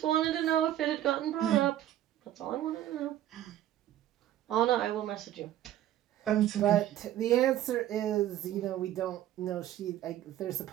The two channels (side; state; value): left; quieter; 12.7 dB